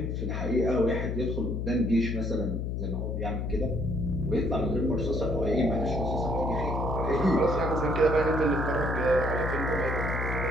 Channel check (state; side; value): noise; left; hum, 2 dB below the sound